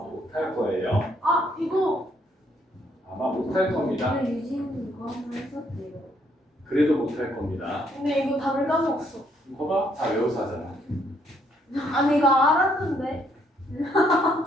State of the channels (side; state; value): both; normal; correlation 0.70